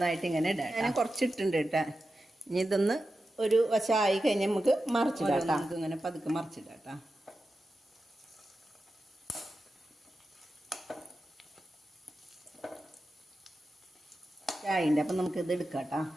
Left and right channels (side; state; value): both; normal; correlation 0.92